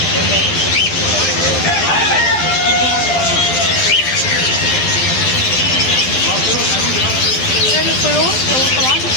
هذول الطيور طبعا.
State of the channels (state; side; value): late; right; 12 ms